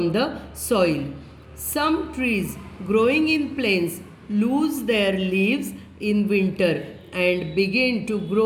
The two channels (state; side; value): identical; both; correlation 1.00